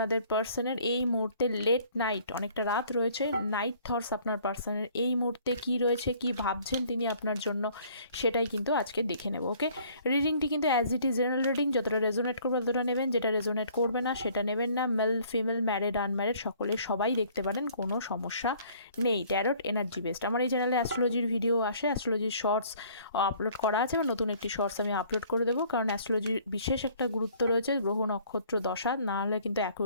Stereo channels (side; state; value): both; inverted; correlation -0.57